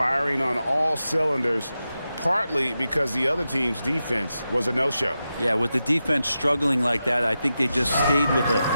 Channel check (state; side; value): inverted; both; correlation -0.90